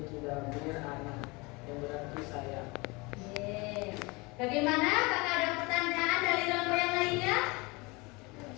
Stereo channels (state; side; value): quieter; right; 25.7 dB